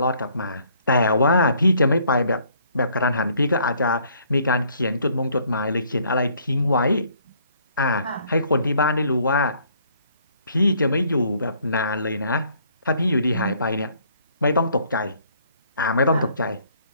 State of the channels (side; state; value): both; inverted; correlation -0.63